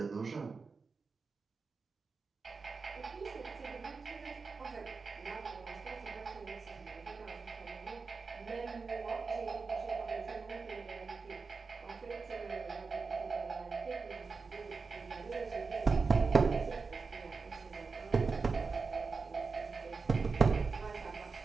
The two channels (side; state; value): left; quieter; 4.6 dB